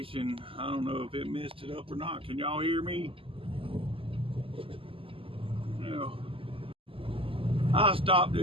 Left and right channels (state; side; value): late; left; 0.26 ms